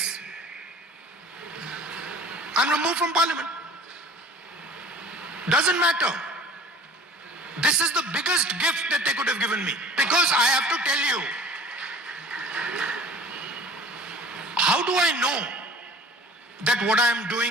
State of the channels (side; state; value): both; normal; correlation 0.45